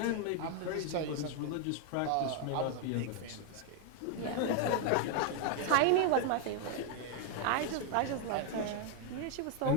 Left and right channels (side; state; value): both; different; correlation 0.00